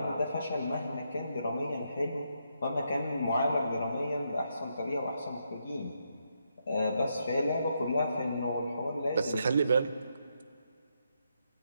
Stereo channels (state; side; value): inverted; both; correlation -0.80